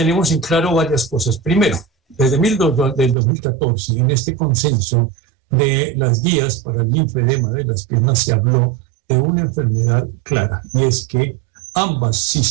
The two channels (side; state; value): left; drops out; at 3.2 s